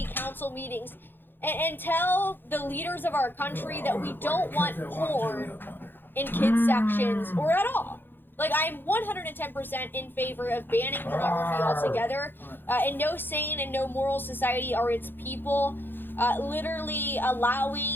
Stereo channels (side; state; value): right; late; 0.098 ms